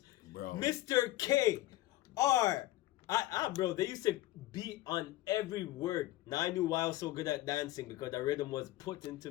Bro. Mr. K, R. Bro, they used to beat on every word. Now I knew why I was so good at dancing, because the rhythm was put into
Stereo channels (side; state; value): right; quieter; 16.4 dB